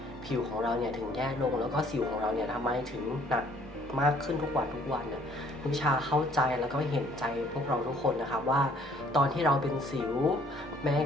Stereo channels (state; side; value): normal; both; correlation 0.60